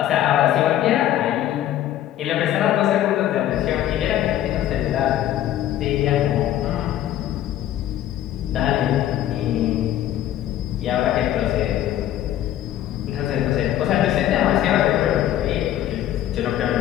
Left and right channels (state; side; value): quieter; right; 12.3 dB